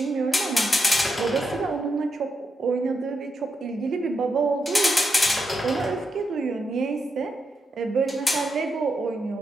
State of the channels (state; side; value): normal; both; correlation 0.84